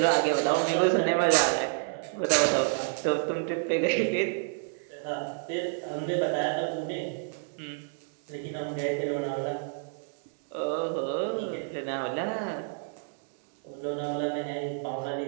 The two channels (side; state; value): left; silent; 58 dB below the other